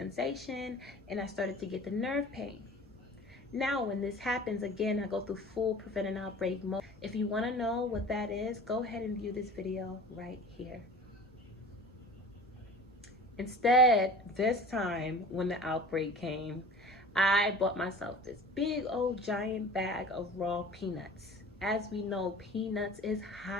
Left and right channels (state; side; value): normal; both; correlation 0.41